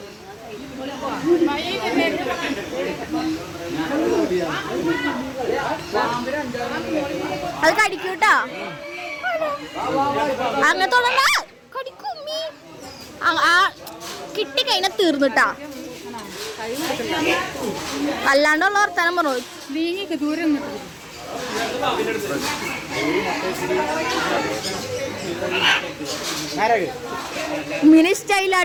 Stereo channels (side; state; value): both; identical; correlation 1.00